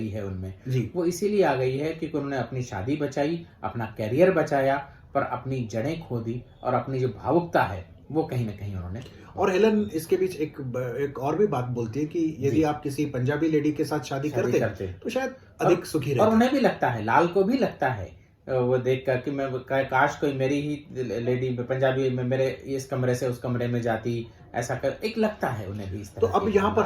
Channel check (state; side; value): identical; both; correlation 1.00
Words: है उनमें जी. वो इसीलिए आ गई है क्योंकि उन्होंने अपनी शादी बचाई, अपना कैरियर बचाया, पर अपनी जड़ें खो दी, और अपनी जो भावुकता है वो कहीं ना कहीं उन्होंने. और हेलन इसके बीच एक और भी बात बोलती है कि यदि आप किसी पंजाबी लेडी के साथ शादी करते तो शायद अधिक सुखी रहते. और उन्हें भी लगता है, लाल को भी लगता है वो देख कर कि मैं काश कोई मेरी ही लेडी पंजाबी में मेरे इस कमरे से उस कमरे में जाती, ऐसा कर एक लगता है उन्हें भी इस तरह. तो अब यहाँ पर